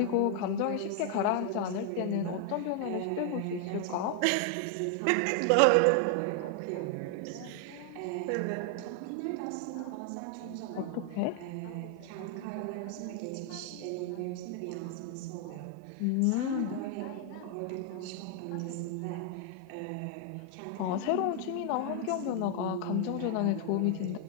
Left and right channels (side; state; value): both; different; correlation 0.00